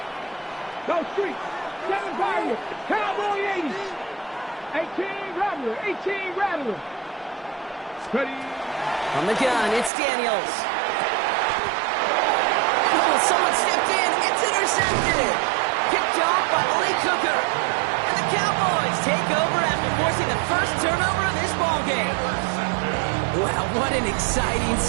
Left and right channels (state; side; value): drops out; left; at 9.9 s